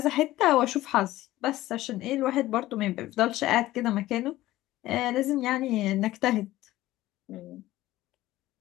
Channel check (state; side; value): quieter; right; 16.1 dB